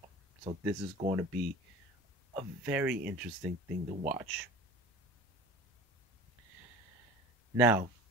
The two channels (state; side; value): normal; both; correlation 0.38